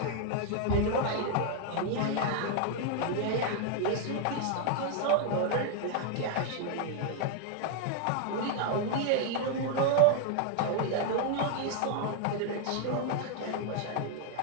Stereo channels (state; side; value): different; both; correlation 0.00